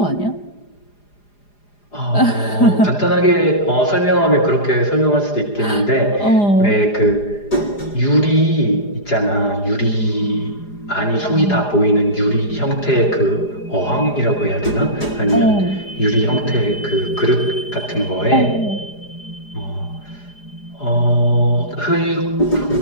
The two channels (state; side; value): late; right; 4.9 ms